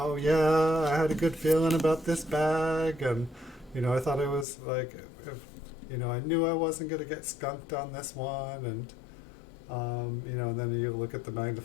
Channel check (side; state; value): right; drops out; at 4.5 s